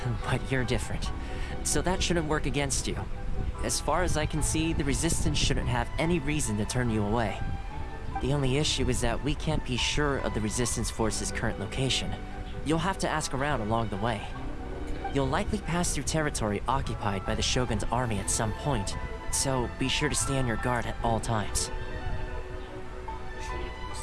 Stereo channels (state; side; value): identical; both; correlation 1.00